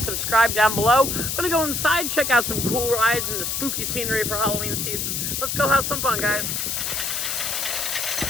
subscribe down below. I'm gonna go inside, check out some cool rides and the spooky scenery for Halloween season. Let's go have some fun, guys.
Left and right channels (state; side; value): noise; left; hiss, 1 dB below the sound